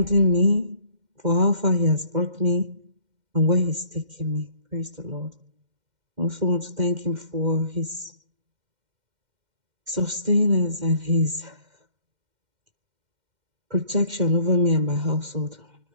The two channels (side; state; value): left; late; 2.1 ms